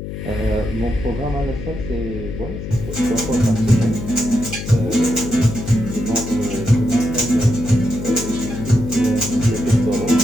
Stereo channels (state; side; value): noise; left; hum, 8 dB below the sound